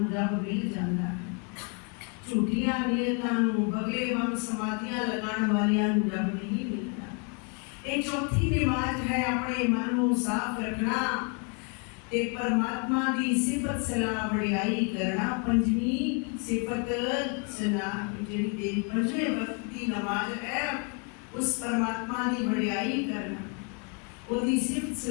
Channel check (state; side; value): quieter; right; 36.3 dB